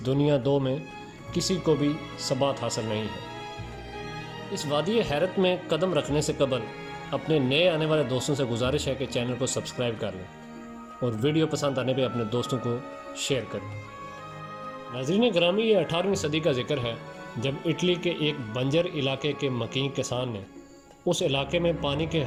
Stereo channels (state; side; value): identical; both; correlation 1.00